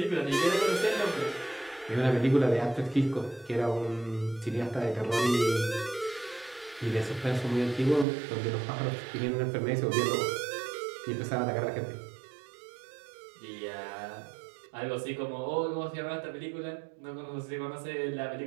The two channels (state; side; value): drops out; left; at 8.1 s